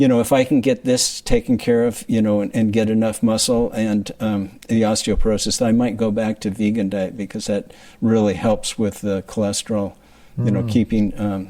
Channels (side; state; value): both; identical; correlation 1.00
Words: I can get this taken care of, and get enough muscle and the osteoporosis, I might go back to vegan diet, because that really helps with the cholesterol. Keeping,